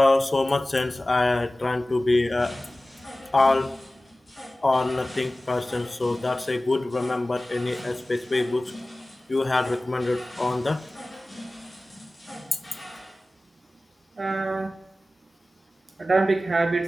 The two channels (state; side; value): normal; both; correlation 0.97